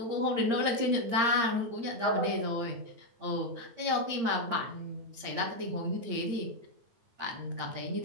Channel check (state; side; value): late; left; 8.7 ms